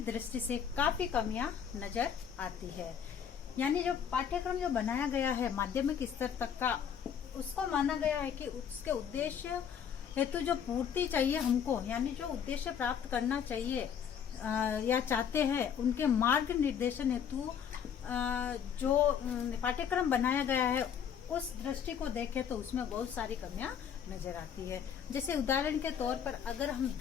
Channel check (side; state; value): right; quieter; 8.0 dB